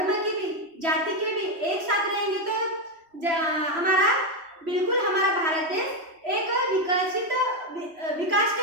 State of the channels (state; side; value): late; left; 3.0 ms